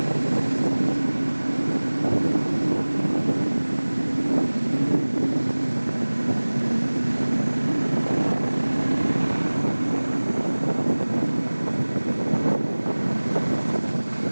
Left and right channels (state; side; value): inverted; both; correlation -1.00